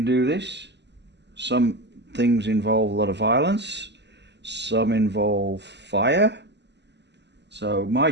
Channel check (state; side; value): late; left; 0.50 ms